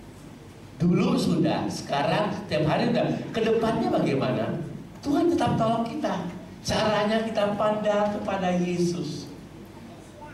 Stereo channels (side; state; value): both; identical; correlation 1.00